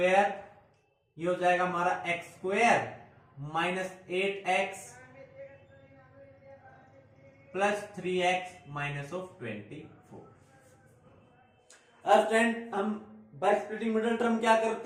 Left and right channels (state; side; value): identical; both; correlation 1.00